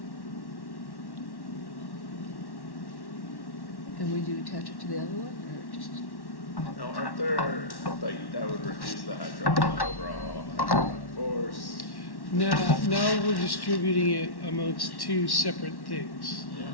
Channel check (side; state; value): right; late; 1.1 ms